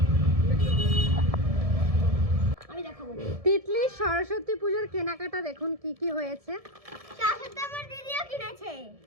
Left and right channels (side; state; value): left; late; 1.7 ms